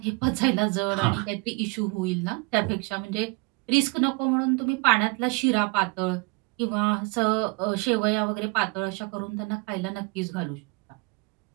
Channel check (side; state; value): left; quieter; 28.9 dB